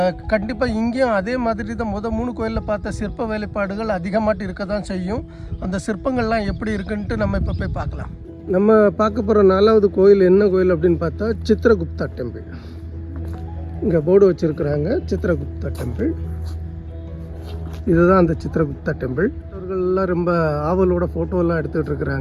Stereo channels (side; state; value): both; identical; correlation 1.00